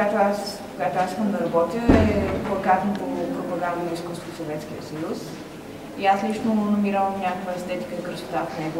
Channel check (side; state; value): both; identical; correlation 1.00